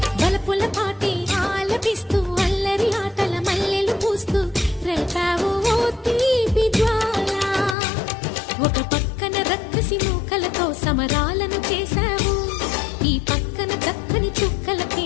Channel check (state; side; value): drops out; right; at 7.8 s